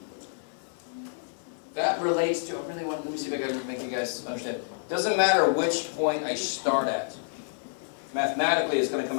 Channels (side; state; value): right; silent; 59 dB below the other